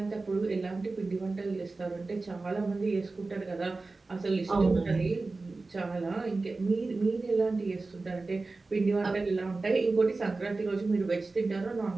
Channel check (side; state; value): left; quieter; 3.6 dB